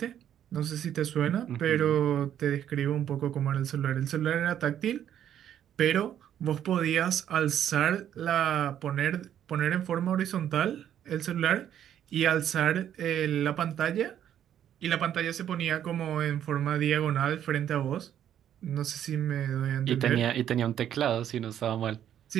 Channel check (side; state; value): left; quieter; 10.3 dB